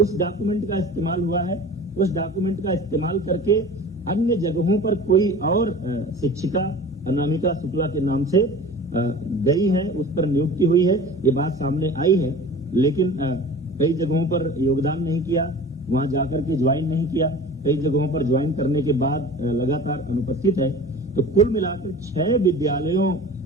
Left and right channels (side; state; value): both; normal; correlation 0.39